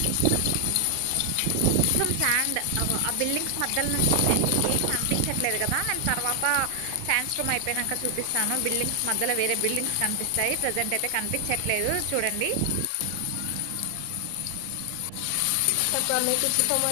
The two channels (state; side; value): different; both; correlation 0.00